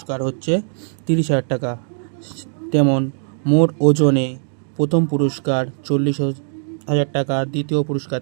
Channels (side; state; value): left; silent; digital silence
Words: হচ্ছে 30,000 টাকা। তেমন মোট ওজনে প্রথম পুরস্কার 40,000 টাকা, দ্বিতীয় পুরস্কার